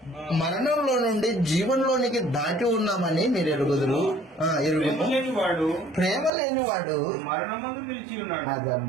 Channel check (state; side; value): drops out; left; at 6.3 s